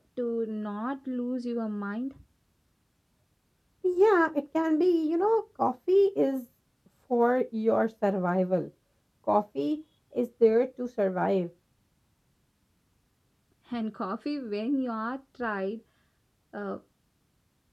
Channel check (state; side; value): identical; both; correlation 1.00